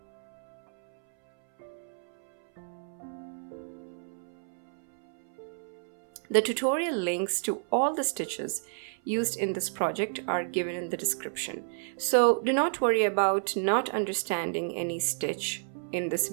The tutorial links to all the stitches used in this project are given in the description. So do not worry about not understanding any stitch in this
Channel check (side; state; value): left; silent; 58 dB below the other